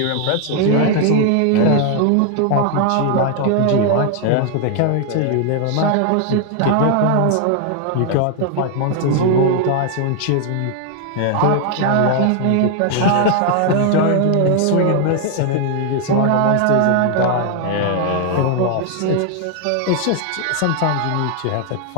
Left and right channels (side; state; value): both; different; correlation 0.00